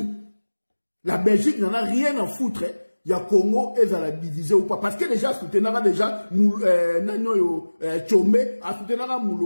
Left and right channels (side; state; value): both; inverted; correlation -1.00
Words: La Belgique n'en a rien à foutre. Il y a Congo et ça la diviser ou pas. Parce que déjà, soutenara déjà, Tchombe, a soutenara